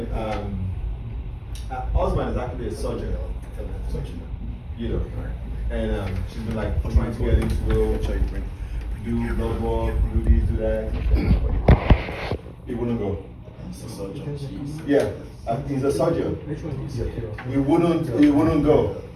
her husband is actually a surgeon, you know, and she's been like trying to get him to go do blood work, do this, do that. He wouldn't go. Yeah. He's a surgeon. He wouldn't go.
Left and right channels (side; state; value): both; identical; correlation 1.00